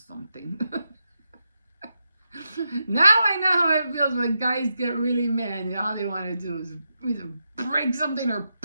Now I know how it feels when guys get really mad. All they want to do is either break something or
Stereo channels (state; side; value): inverted; both; correlation -0.86